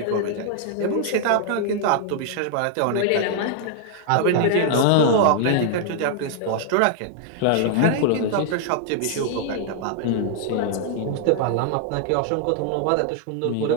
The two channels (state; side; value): different; both; correlation 0.00